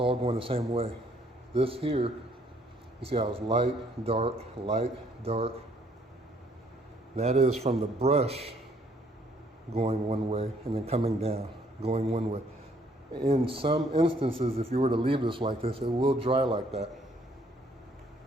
going the same way. This here, you see how it's light, dark, light, dark. That is from the brush going one way and then coming down, going one way. In some instances, if you were to leave this like this, it will dry like that.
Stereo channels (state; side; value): normal; both; correlation 0.65